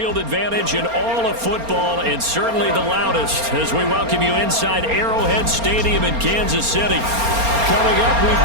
advantage in all of football, and certainly the loudest, as we welcome you inside Arrowhead Stadium in Kansas City. Coming up, we've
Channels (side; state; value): left; late; 4.3 ms